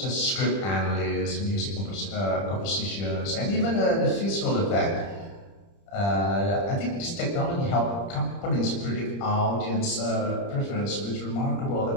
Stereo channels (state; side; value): late; right; 30 ms